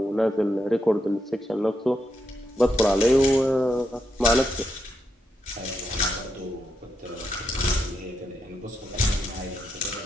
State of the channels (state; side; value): normal; both; correlation 0.82